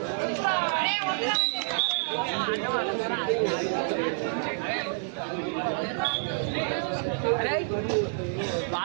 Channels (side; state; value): left; silent; digital silence